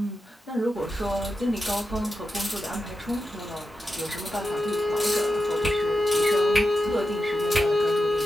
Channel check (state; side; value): normal; both; correlation 0.89